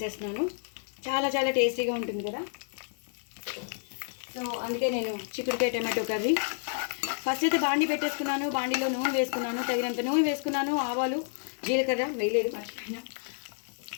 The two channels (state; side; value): silent; right; digital silence